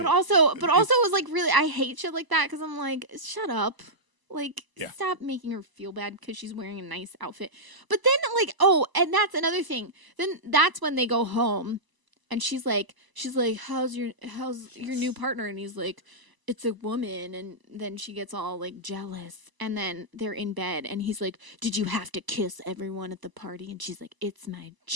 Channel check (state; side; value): late; left; 1.0 ms